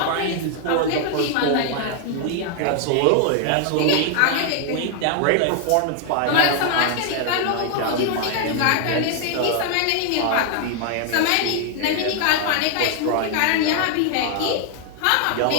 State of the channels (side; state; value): both; different; correlation 0.00